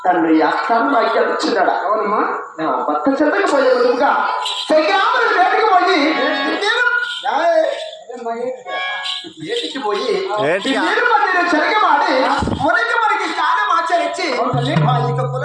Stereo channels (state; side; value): identical; both; correlation 1.00